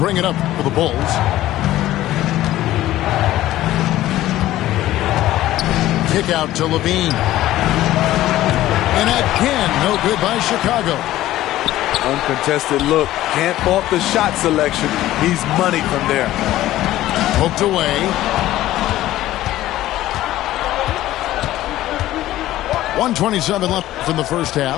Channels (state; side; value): quieter; right; 14.8 dB